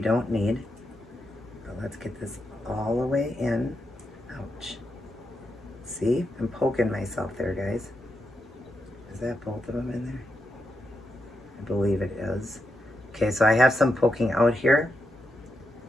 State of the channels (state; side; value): normal; both; correlation 0.85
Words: need. But let's get this all the way in. Ouch. See? I'm poking myself there, guys. Is that both of them in there? I believe it is. Okay, so I have some poking out here,